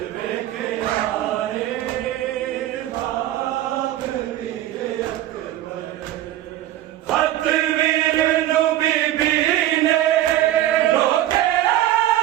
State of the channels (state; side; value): quieter; left; 13.6 dB